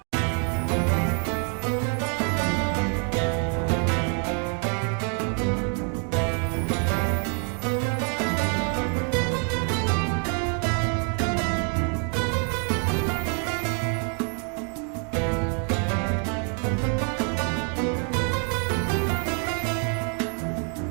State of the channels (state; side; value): quieter; left; 39.8 dB